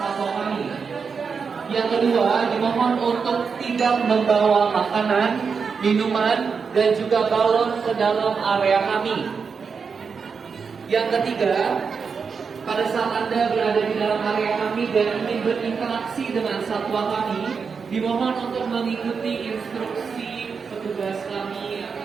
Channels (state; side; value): quieter; left; 5.6 dB